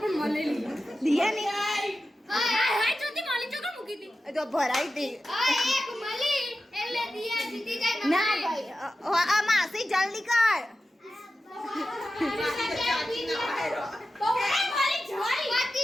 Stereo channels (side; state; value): both; normal; correlation 0.93